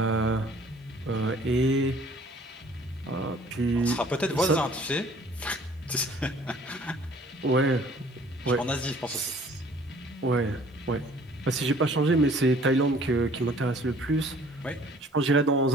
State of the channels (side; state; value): both; normal; correlation 0.55